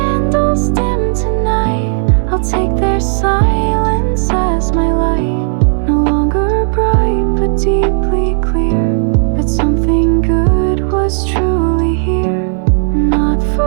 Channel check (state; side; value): silent; left; digital silence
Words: dim tonight, I'll take their silence as my light. No longer bright, but deeply clear, that something good was truly here. Not